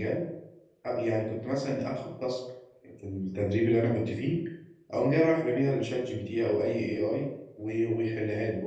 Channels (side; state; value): both; identical; correlation 1.00